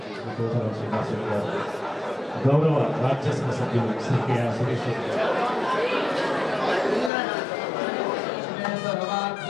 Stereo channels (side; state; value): right; drops out; at 7.1 s